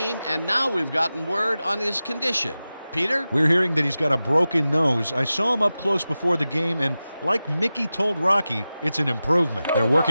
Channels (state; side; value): inverted; both; correlation -0.95